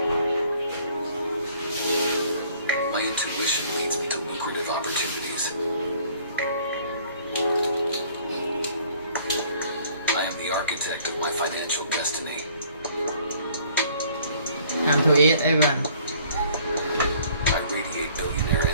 My intuition leads me to lucrative opportunities. I am the architect of my financial destiny. Time to eat, everyone. I radiate billionaire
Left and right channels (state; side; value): inverted; both; correlation -0.58